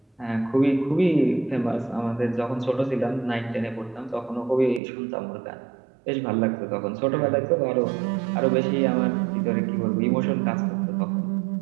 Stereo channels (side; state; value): left; drops out; at 4.8 s